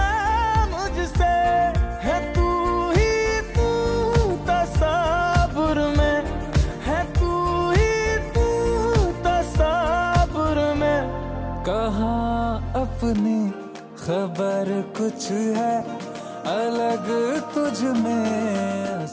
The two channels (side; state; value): both; identical; correlation 1.00